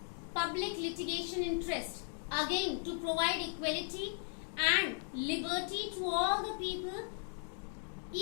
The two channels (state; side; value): silent; right; 53 dB below the other